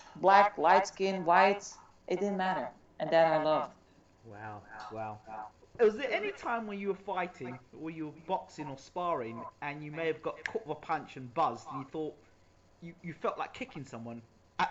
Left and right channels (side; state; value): both; identical; correlation 1.00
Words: black, light skin, white, it didn't matter. And that I loved. Wow, wow. Was there any time when you were fighting, or you were boxing or sparring, and you may have got caught with a punch and buzzed, and you thought you felt like kicking someone at